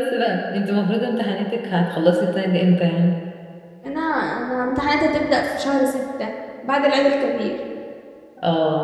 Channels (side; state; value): both; identical; correlation 1.00